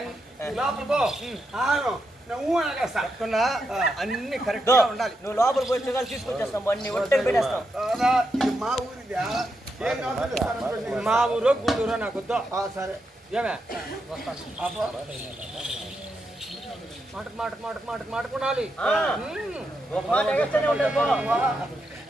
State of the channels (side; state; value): both; normal; correlation 0.84